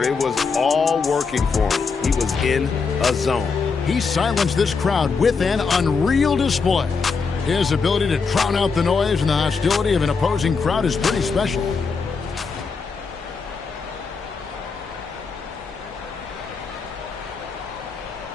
it was all working for him. He was in a zone. He silenced this crowd with an unreal display. His ability to drown out the noise and the hostility of an opposing crowd is pretty special.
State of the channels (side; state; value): right; quieter; 5.0 dB